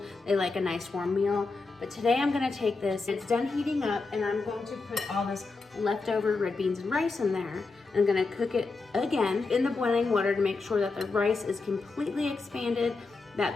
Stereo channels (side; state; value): right; quieter; 3.9 dB